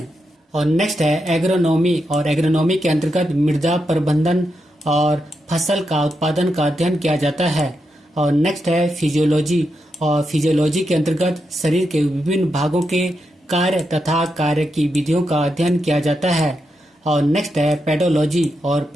और नेक्स्ट है एग्रोनॉमी, और एग्रोनॉमी के अंतर्गत मृदा प्रबंधन और फसल का उत्पादन का अध्ययन किया जाता है। और नेक्स्ट है फिजियोलॉजी, और फिजियोलॉजी के अंतर्गत शरीर के विभिन्न भागों के कार्य तथा कार्य की विधियों का अध्ययन किया जाता है। और नेक्स्ट है पेडोलॉजी, और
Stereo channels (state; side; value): normal; both; correlation 0.85